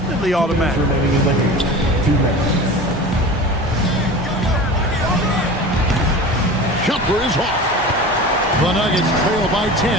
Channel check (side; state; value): both; normal; correlation 0.34